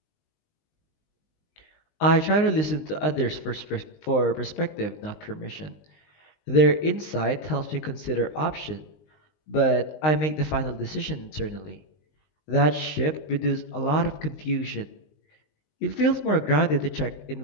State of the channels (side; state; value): right; late; 19 ms